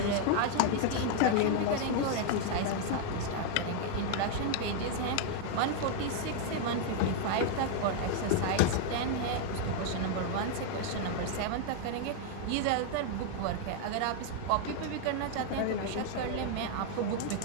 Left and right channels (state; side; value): different; both; correlation 0.00